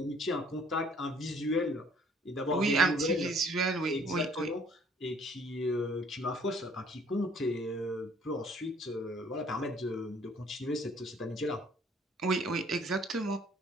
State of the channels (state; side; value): normal; both; correlation 0.59